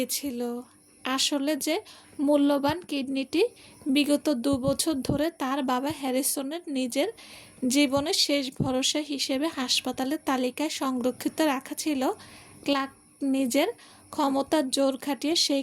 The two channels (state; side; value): identical; both; correlation 1.00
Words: আসলে যে মূল্যবান কিডনিটি বিগত 2 বছর ধরে তার বাবা হ্যারিসনের নিজের জীবনের শেষ ভরসা হিসেবে হাসপাতালের তালিকায় সংরক্ষিত রাখা ছিল, ক্লার্ক নিজের ক্ষমতার জোর খাটিয়ে সেই